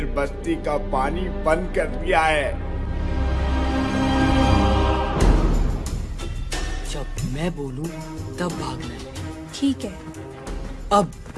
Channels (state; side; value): identical; both; correlation 1.00